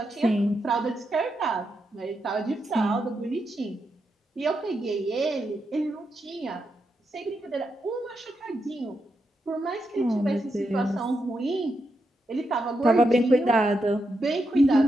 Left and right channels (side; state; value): both; normal; correlation 0.84